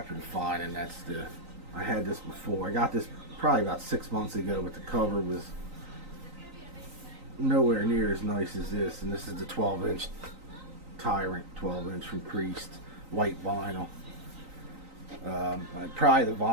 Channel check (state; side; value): late; left; 3.9 ms